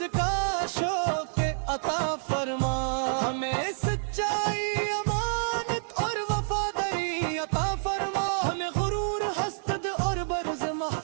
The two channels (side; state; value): left; silent; digital silence